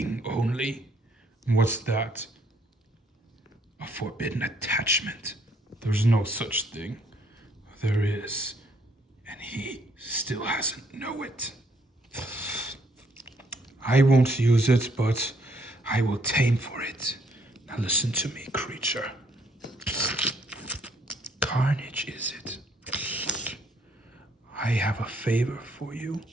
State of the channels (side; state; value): both; normal; correlation 0.67